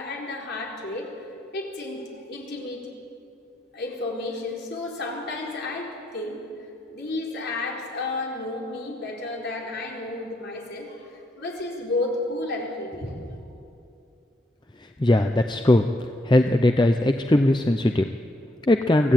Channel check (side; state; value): both; normal; correlation 0.77